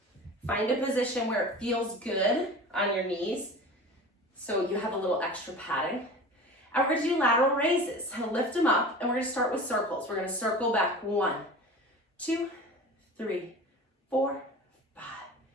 Find a position where it feels good on your knees, so you have a little extra padding. And we're gonna do lateral raises. Lift them up, and we're gonna start with circles. We're gonna circle back 1, 2, 3, 4, 5,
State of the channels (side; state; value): both; normal; correlation 0.37